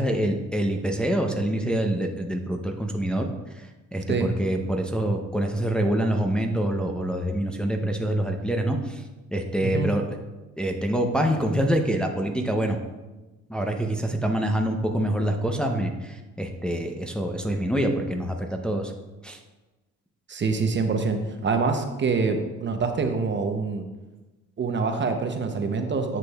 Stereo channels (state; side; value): normal; both; correlation 0.67